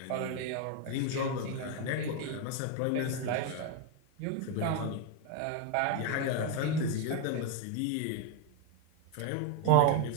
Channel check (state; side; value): different; both; correlation 0.01